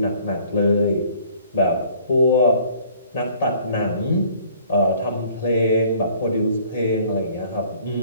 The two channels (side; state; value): both; inverted; correlation -0.55